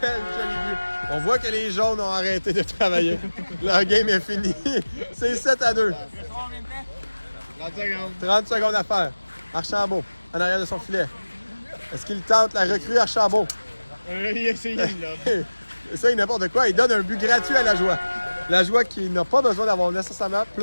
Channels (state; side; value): inverted; both; correlation -1.00